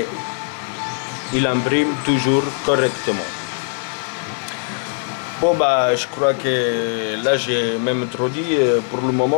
il imprime toujours correctement. Bon bah je crois que là j'ai même trop dit pour le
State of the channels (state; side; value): silent; right; 66 dB below the other